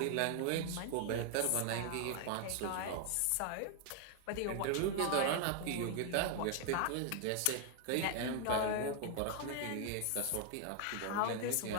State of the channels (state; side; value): different; both; correlation 0.00